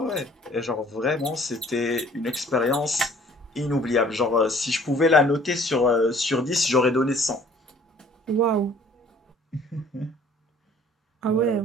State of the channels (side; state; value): both; normal; correlation 0.55